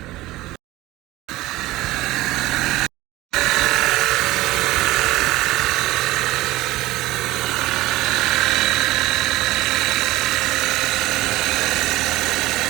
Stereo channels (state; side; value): quieter; left; 17.9 dB